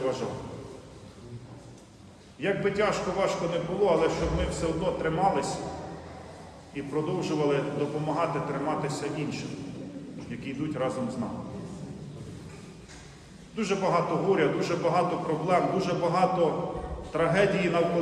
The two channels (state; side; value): identical; both; correlation 1.00